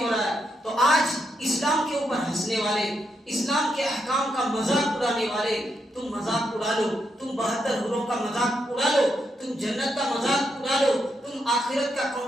رہا ہے۔ تو آج اسلام کے اوپر ہنسنے والے، اسلام کے احکام کا مذاق اڑانے والے، تم مذاق اڑا لو، تم 72 حوروں کا مذاق اڑا لو، تم جنت کا مذاق اڑا لو، تم آخرت کا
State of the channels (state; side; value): normal; both; correlation 0.81